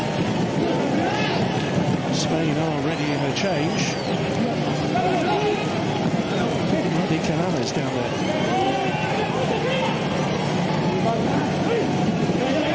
Spain are ready in a change. Mehdi Canales down there.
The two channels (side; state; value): both; identical; correlation 1.00